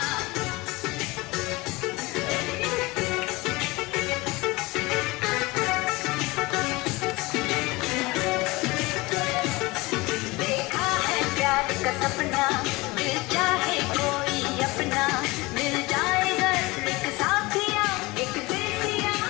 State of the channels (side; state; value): right; quieter; 22.6 dB